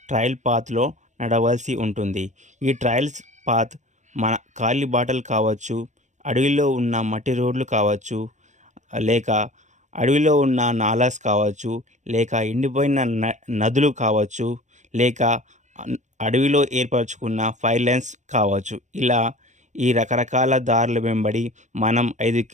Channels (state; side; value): late; left; 0.35 ms